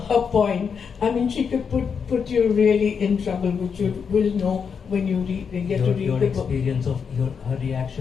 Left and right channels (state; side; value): quieter; right; 6.4 dB